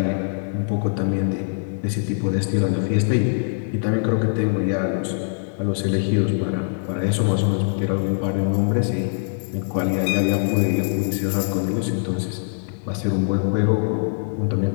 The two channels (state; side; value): silent; right; 64 dB below the other